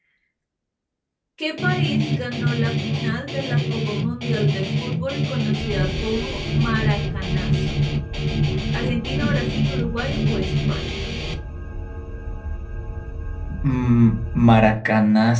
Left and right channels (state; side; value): identical; both; correlation 1.00